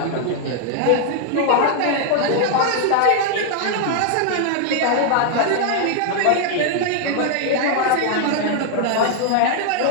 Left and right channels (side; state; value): both; different; correlation 0.00